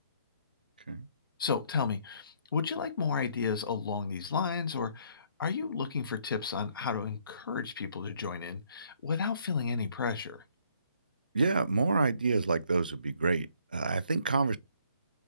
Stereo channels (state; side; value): inverted; both; correlation -0.66